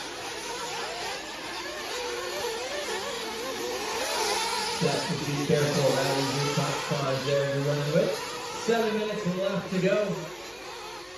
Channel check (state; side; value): noise; left; hum, 29 dB below the sound